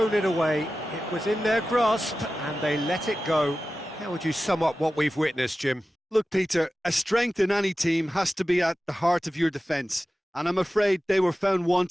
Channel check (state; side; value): normal; both; correlation 0.94